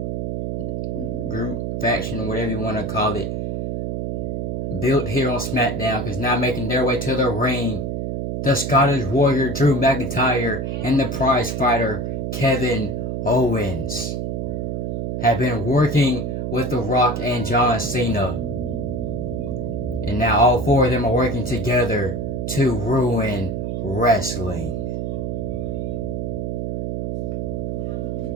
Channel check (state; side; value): noise; right; hum, 2 dB below the sound